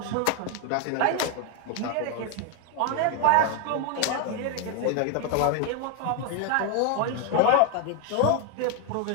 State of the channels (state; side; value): different; both; correlation 0.01